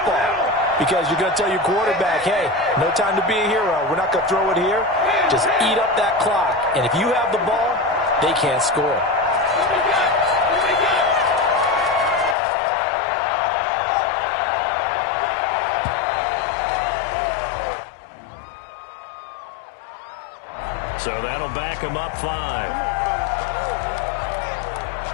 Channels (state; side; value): drops out; right; at 12.4 s